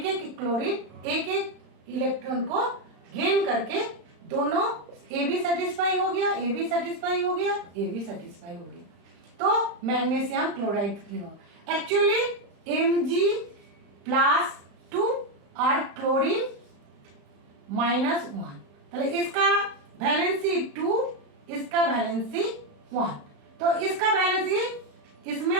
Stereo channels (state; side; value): late; left; 35 ms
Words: एक क्लोरीन एक एक इलेक्ट्रॉन को गेन करके दोनों ए भी सेटिस्फाई हो गया, ए भी सेटिस्फाई हो गया, ए भी सेटिस्फाई हो गया, तो मैग्नीशियम क्लोराइड एक्चुअली Mg+2 और क्लोरीन -1, तो इसका वैलेंसी 2, इसका वैलेंसी 1, तो इसका वैलेंसी इसमें